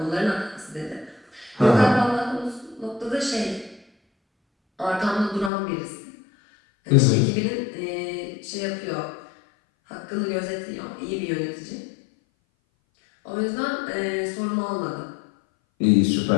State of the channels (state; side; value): drops out; right; at 5.5 s